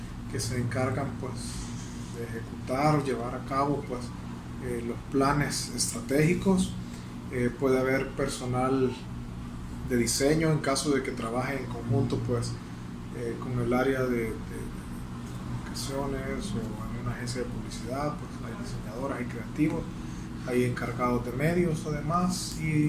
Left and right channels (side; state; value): both; identical; correlation 1.00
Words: que se encargan pues de ejecutar o llevar a cabo pues los planes estratégicos. Puede haber personal de diseño en caso de que trabaje en conjunto pues con el área de comunicaciones, o en una agencia de publicidad pues hay diseñadoras y creativos, hay encargados de medios además,